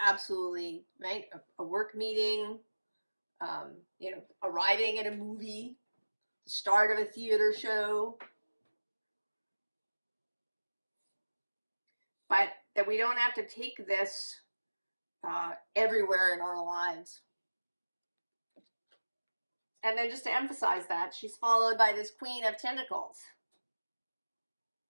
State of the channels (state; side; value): inverted; both; correlation -1.00